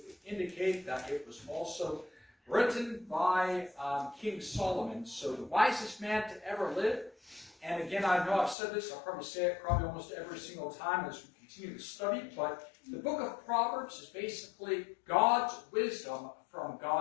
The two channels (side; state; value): right; drops out; at 8.6 s